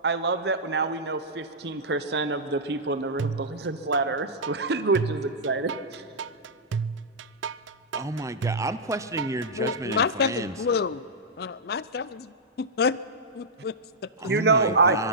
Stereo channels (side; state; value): both; normal; correlation -0.09